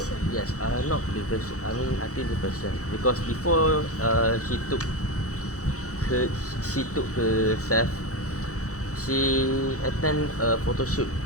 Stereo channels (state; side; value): late; right; 0.65 ms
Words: yes, not depression. I mean, I think depression because before her, she took herself. She attend a photo shoot